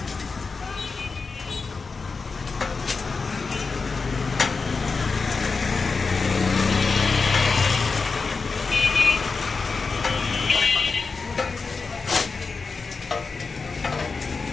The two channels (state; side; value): quieter; right; 4.5 dB